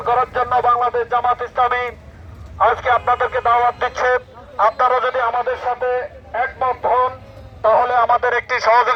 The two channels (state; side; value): identical; both; correlation 1.00